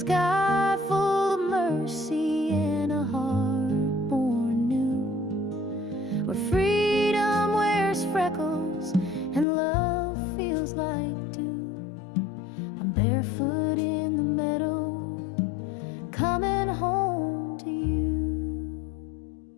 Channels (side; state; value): right; drops out; at 9.5 s